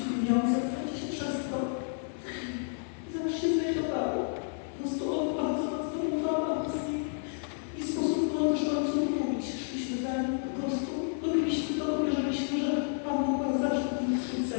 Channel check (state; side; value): silent; right; 57 dB below the other